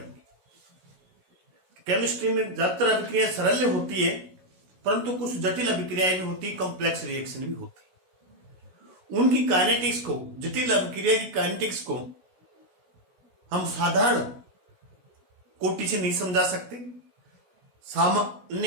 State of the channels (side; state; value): left; late; 16 ms